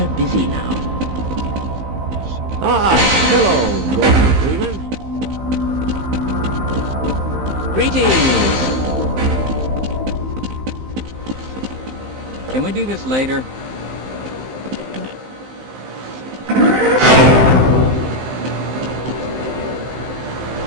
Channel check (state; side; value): late; left; 15 ms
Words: busy now. Ah, hello, Gordon Freeman. Greetings! Can we do this later?